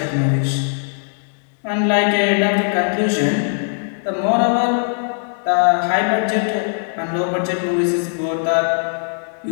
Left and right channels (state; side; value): silent; right; digital silence